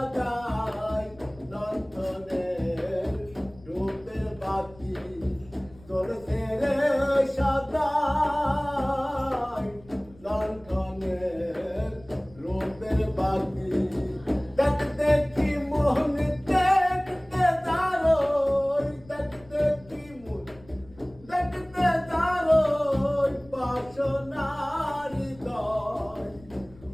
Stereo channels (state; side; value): noise; left; rumble, 24 dB below the sound